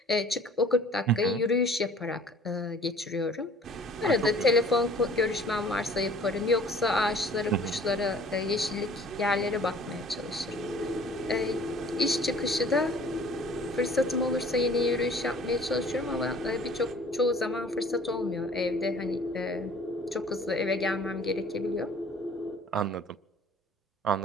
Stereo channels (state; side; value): normal; both; correlation 0.51